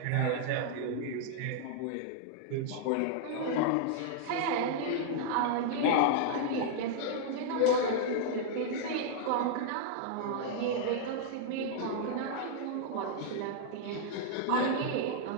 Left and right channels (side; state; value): both; different; correlation -0.01